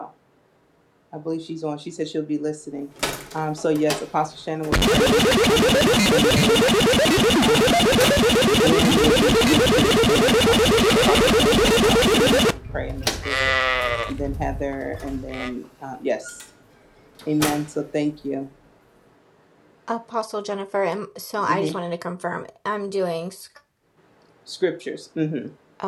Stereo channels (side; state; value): both; identical; correlation 1.00